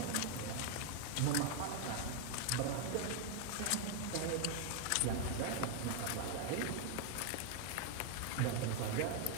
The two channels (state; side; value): different; both; correlation 0.00